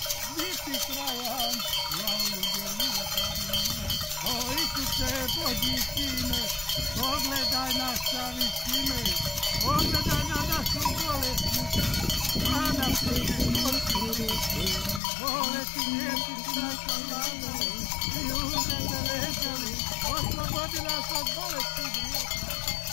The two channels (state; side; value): drops out; right; at 15.0 s